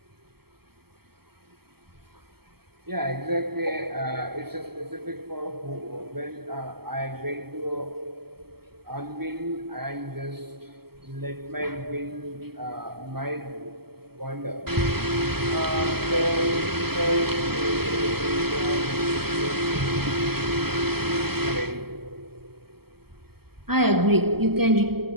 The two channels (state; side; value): late; left; 0.96 ms